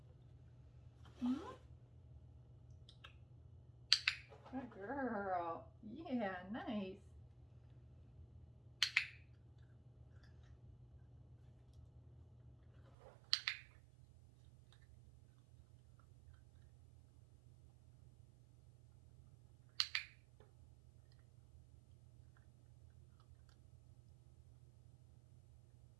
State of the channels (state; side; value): drops out; left; at 13.0 s